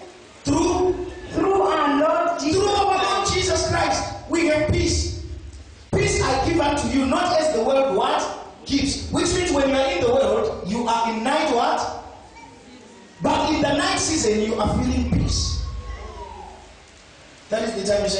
Through our Lord Jesus. Through our Lord Jesus Christ, we have peace. Peace I give unto you, not as the world what gives. Which means when you are in the world, you are in night what? But in the night season, you are feeling peace. That is the time you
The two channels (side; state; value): both; identical; correlation 1.00